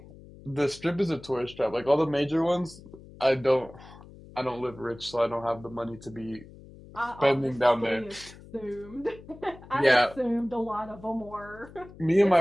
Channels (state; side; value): noise; left; hum, 19 dB below the sound